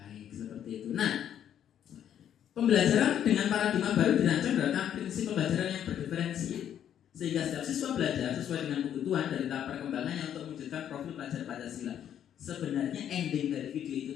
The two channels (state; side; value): quieter; right; 9.9 dB